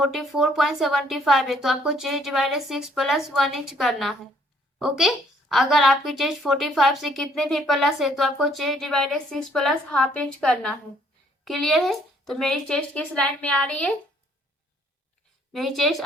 है तो आपको चेस्ट डिवाइडेड 6 + 1 इंच करना है। ओके, अगर आपकी चेस्ट 45 से कितने भी प्लस है तो आपको चेस्ट डिवाइडेड 6 + ½ इंच करना है। क्लियर है, तो मेरी चेस्ट किस लाइन में आ रही है, मेरी चेस्ट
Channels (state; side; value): normal; both; correlation 0.64